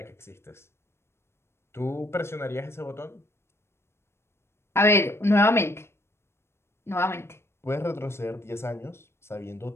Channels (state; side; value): late; right; 0.12 ms